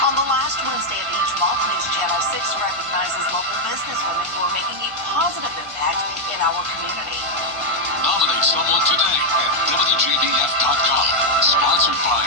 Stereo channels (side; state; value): left; late; 1.5 ms